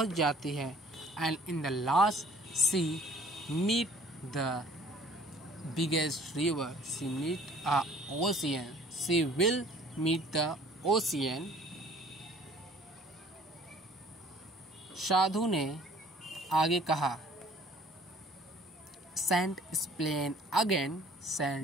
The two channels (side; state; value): both; normal; correlation 0.54